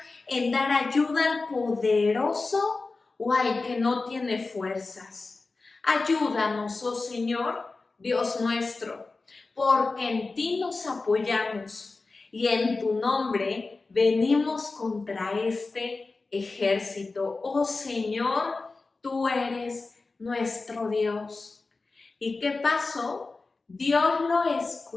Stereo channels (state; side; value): quieter; right; 3.7 dB